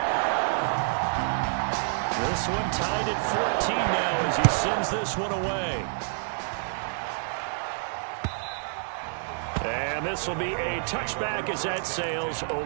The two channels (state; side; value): silent; left; digital silence